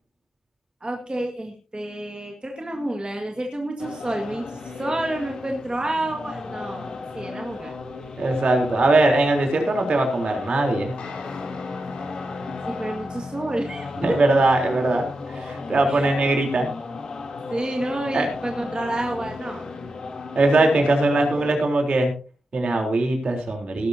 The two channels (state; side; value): normal; both; correlation 0.89